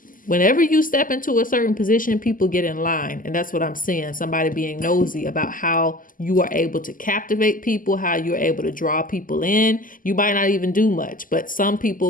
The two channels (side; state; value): right; late; 0.40 ms